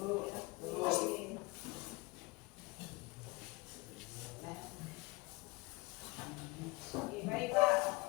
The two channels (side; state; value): right; quieter; 23.4 dB